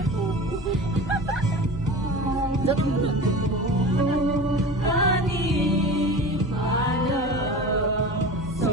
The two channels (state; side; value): normal; both; correlation 0.33